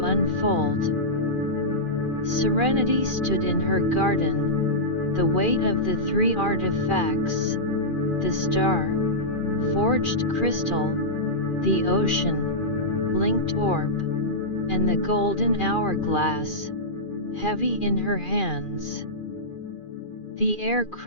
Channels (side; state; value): right; late; 2.4 ms